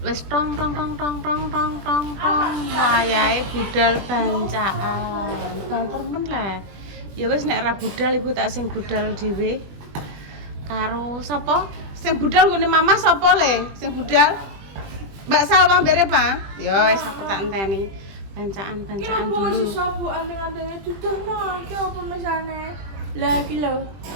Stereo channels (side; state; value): left; late; 20 ms